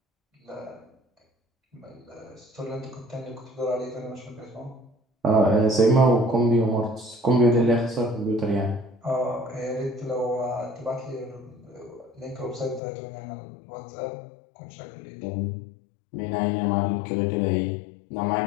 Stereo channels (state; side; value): drops out; right; at 12.8 s